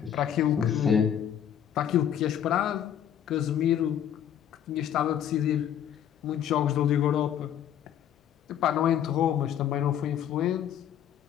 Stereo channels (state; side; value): quieter; right; 9.8 dB